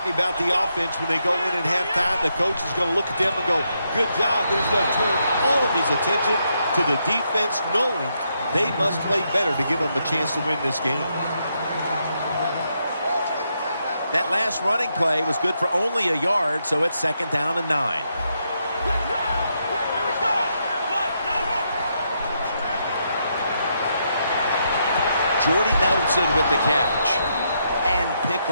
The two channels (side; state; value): both; inverted; correlation -0.79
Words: about the offense when they go in at halftime. The coach is going to look at them and go, good job. He's going to turn all of his attention to the defense, knowing they must play better to give them a chance to win this game. That last running play was good for only a yard, so it's second down and 9. Jordy Nelson with the catch. And pick